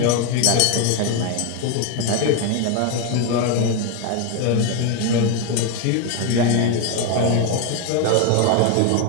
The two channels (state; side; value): different; both; correlation 0.01